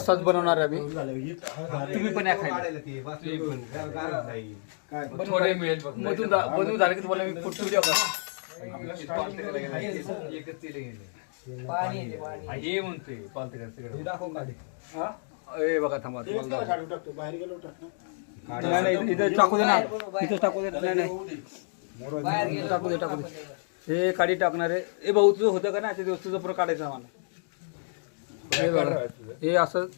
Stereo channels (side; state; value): right; silent; digital silence